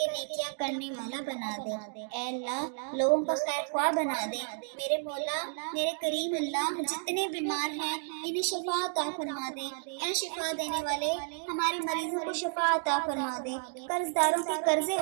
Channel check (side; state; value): left; silent; 57 dB below the other